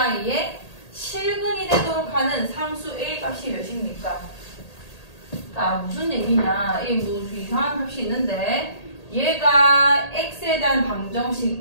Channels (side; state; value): right; late; 1.8 ms